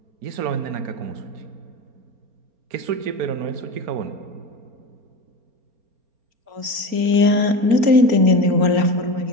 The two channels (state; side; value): late; left; 4.3 ms